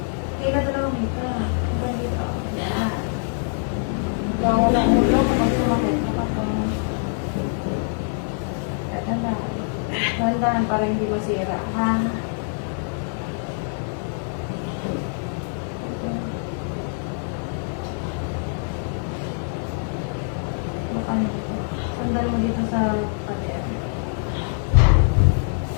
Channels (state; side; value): silent; right; 62 dB below the other